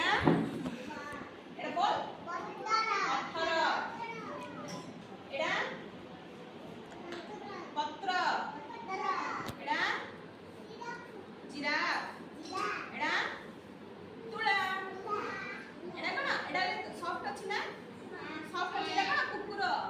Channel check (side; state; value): both; identical; correlation 1.00